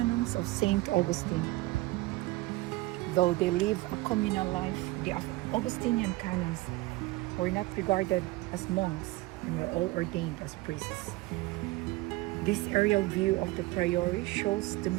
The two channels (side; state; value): left; quieter; 20.0 dB